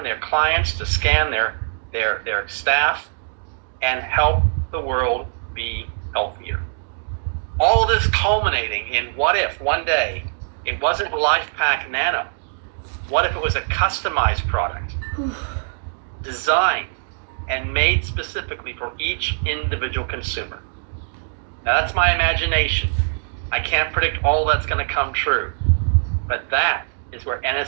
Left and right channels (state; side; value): silent; left; digital silence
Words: their clients, to scan their staff, and help the world be healthier. All of this culminating in what if one day it wasn't LifePak Nano? What if it was a customized product, designed and made specifically for each individual consumer? Now that's my imagination. I can't predict all that's going to come true, but that is where